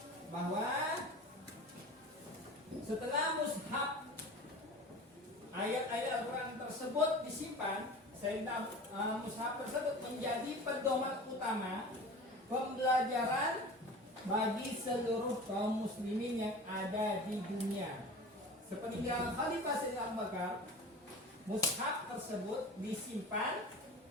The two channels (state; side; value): normal; both; correlation 0.36